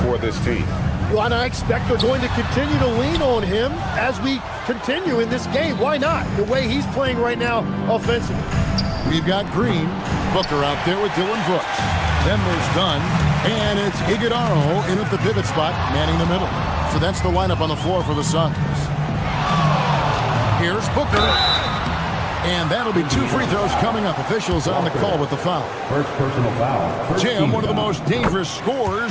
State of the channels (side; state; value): both; identical; correlation 1.00